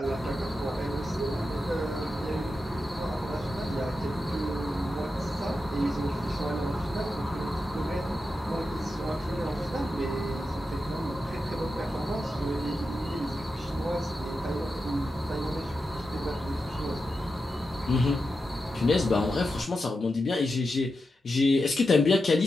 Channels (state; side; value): normal; both; correlation 0.89